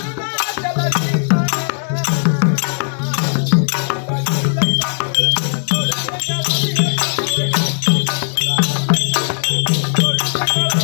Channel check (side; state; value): right; silent; 68 dB below the other